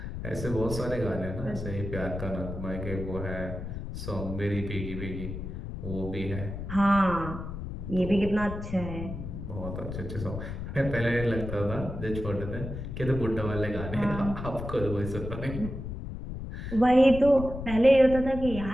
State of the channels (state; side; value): noise; left; rumble, 7 dB below the sound